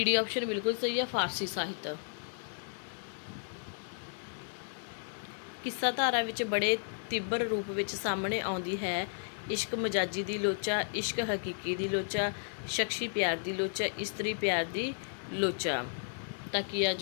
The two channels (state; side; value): silent; right; digital silence